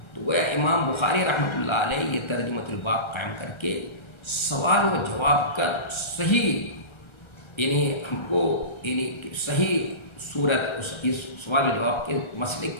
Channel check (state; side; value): late; right; 1.3 ms